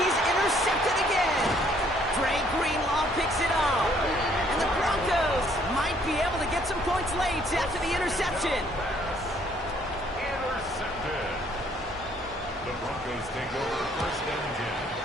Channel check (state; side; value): normal; both; correlation 0.64